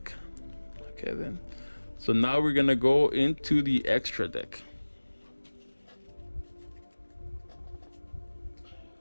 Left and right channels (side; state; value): both; inverted; correlation -1.00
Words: Okay then. So now we're gonna go into the extra deck.